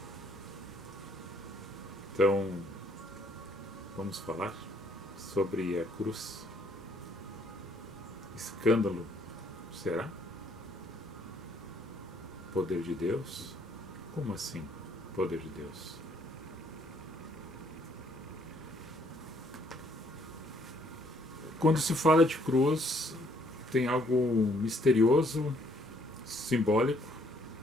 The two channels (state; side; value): normal; both; correlation 0.66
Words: Então, vamos falar sobre a cruz. Escândalo, será? Poder de Deus? Como assim, poder de Deus? Quando se fala de cruz, tem algo misterioso, simbólico,